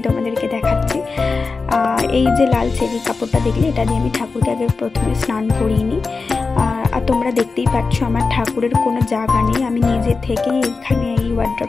তোমাদেরকে দেখাচ্ছি। এই যে লাল চেরি কাপড়টা দেখলে, এটা দিয়ে আমি ঠাকুরকে আগে প্রথমে স্নান করিয়ে নিই। আর তোমরা দেখতেই পাচ্ছ আমার ঠাকুরের কোনো জায়গা নেই, আমি নিজে থেকেই এইখানে এই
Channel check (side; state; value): right; quieter; 4.3 dB